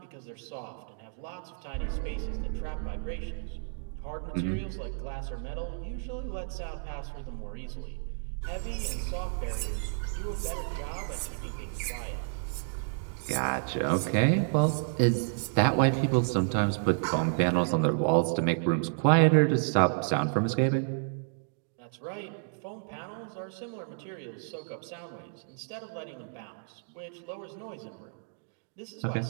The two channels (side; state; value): left; silent; digital silence